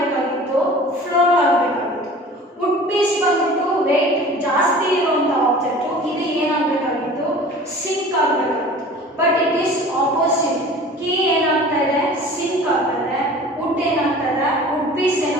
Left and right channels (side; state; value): both; normal; correlation 0.42